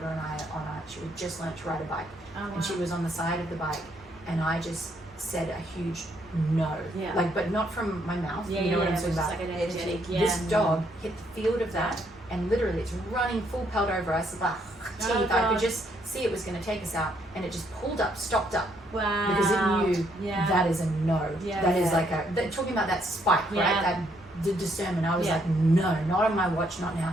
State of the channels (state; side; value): normal; both; correlation 0.71